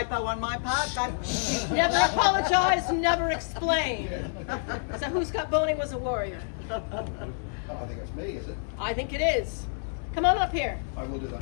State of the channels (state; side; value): silent; right; 59 dB below the other